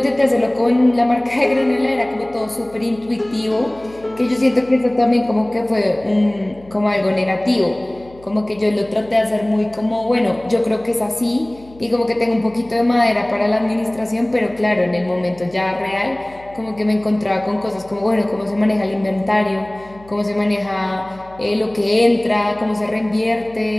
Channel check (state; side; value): noise; left; hum, 24 dB below the sound